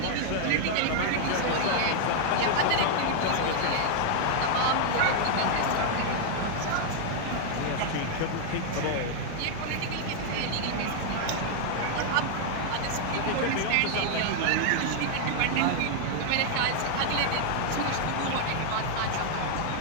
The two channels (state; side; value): different; both; correlation 0.00